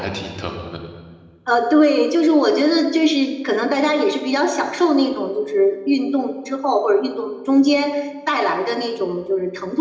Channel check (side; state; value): both; identical; correlation 1.00